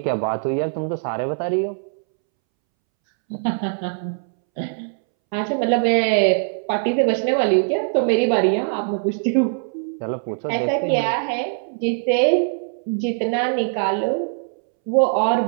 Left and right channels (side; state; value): left; silent; 65 dB below the other